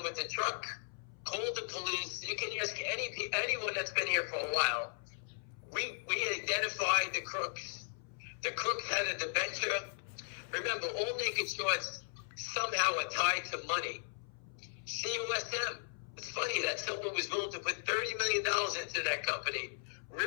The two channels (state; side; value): silent; right; 53 dB below the other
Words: with the truck, call the police. You can ask anyone that's been here for a while. We identified the crooks. The crooks had a debenture. Remember, all naked shorts somehow are tied to money. COSM. It's funny that someone was willing to put $30 million into that company